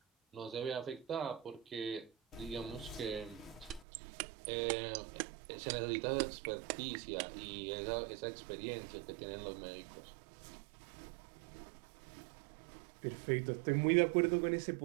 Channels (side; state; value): left; drops out; at 3.9 s